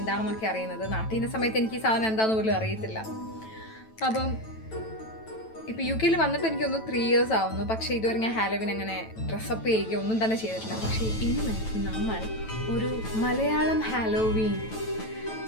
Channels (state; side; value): late; right; 9.1 ms